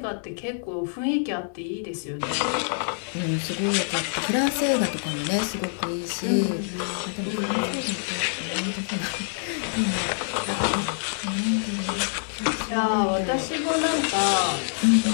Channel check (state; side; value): silent; right; digital silence